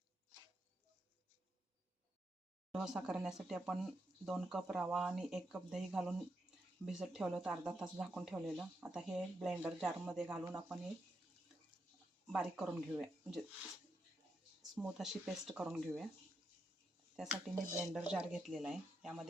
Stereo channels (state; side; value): normal; both; correlation 0.82